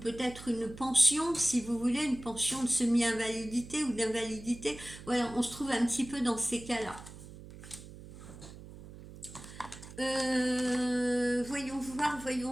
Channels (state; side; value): noise; right; hum, 16 dB below the sound